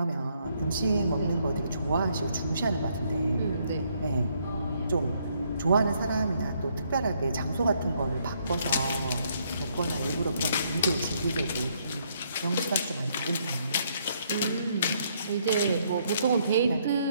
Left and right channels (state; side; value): inverted; both; correlation -0.71